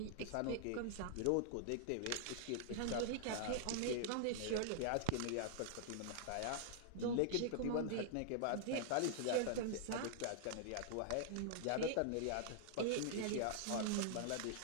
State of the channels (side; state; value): both; different; correlation -0.01